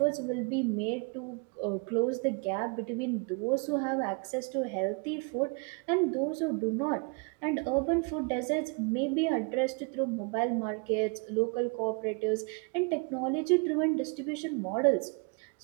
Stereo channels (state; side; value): quieter; left; 34.0 dB